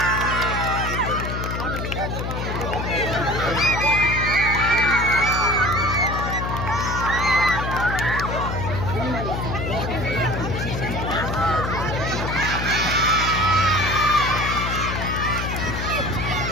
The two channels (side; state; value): left; noise; hum, 4 dB below the sound